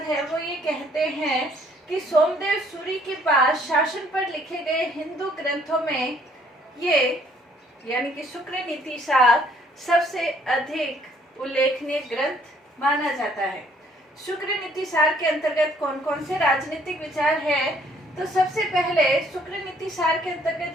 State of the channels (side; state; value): both; normal; correlation 0.62